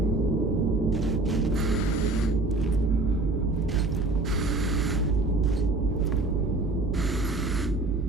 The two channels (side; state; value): left; quieter; 3.0 dB